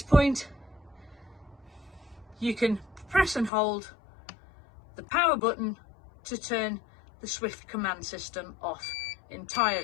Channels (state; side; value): drops out; right; at 3.5 s